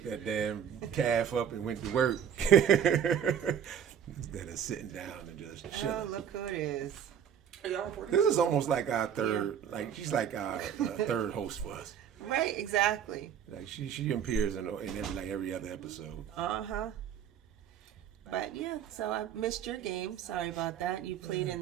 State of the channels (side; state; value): left; quieter; 8.7 dB